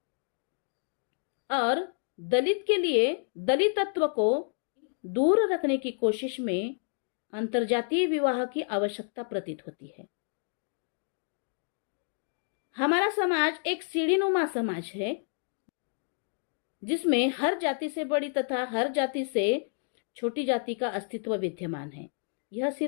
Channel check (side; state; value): right; silent; 58 dB below the other